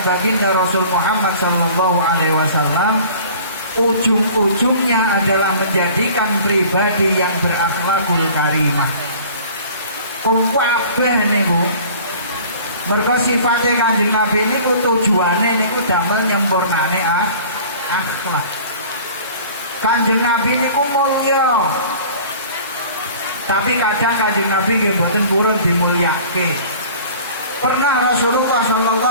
baginda Rasul Muhammad sallallahu alaihi wasallam ujung-ujungnya adalah menjadikan pribadi yang berakhlakul karimah. Kabeh niku mergo sifate Kanjeng Nabi niku tujuane niku damel nyempurnane akhlak. Kanjeng Nabi niku mulya. Tapi kadang Kanjeng Nabi nggih mboten purun dimulyake. Pernah Rasulullah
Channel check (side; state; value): both; inverted; correlation -0.45